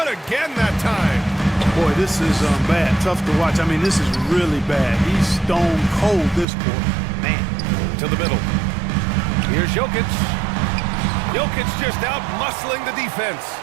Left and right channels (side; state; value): left; drops out; at 6.5 s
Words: again that time. Boy, this is bad. Tough to watch. I mean, this is really bad. He's stone cold this quarter. Man. To the middle. Here's Jokic. Jokic just out muscling the defense.